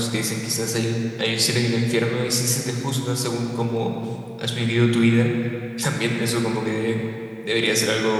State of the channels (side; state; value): both; identical; correlation 1.00